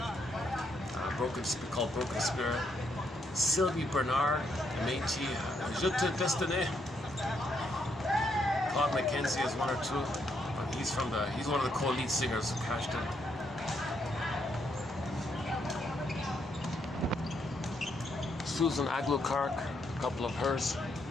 called Broken Spirit. Sylvie Bernard, Métis, Je te destiné. Claude McKenzie is one or two, but he's one of the co-lead singers who cashed in. Susan Aglukark, a couple of hers.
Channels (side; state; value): both; normal; correlation 0.76